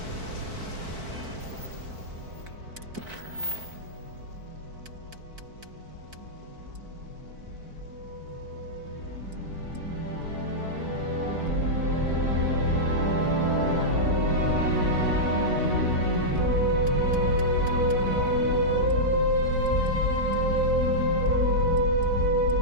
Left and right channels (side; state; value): left; late; 4.5 ms